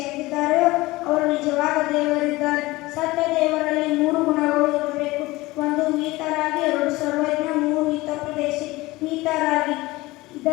ಅವರು ನಿಜವಾದ ದೇವರಿದ್ದಾರೆ. ಸತ್ಯ ದೇವರಲ್ಲಿ ಮೂರು ಗುಣಗಳು ಇರಬೇಕು. ಒಂದು ಮೀತರಾಗಿ, ಎರಡು ಸರ್ವಜ್ಞ, ಮೂರು ಹಿತೋಪದೇಶಿ. ಮೀತರಾಗಿ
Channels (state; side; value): quieter; right; 20.2 dB